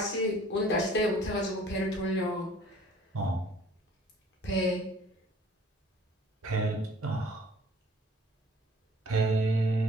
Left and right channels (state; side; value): normal; both; correlation 0.53